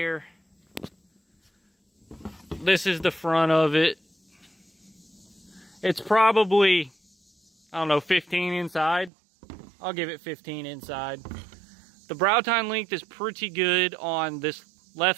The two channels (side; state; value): left; drops out; at 9.1 s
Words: This is the front of it. It's probably, I don't know, 15 inside. I'll give it 15 inside. The brow tine length is pretty good on this